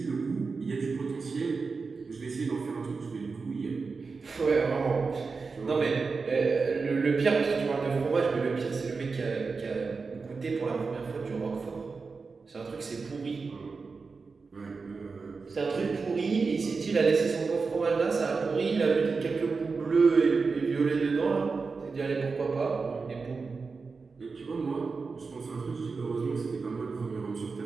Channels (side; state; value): left; quieter; 4.6 dB